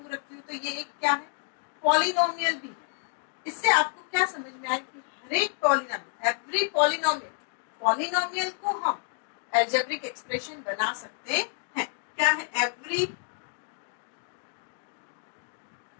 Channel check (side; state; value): right; silent; 55 dB below the other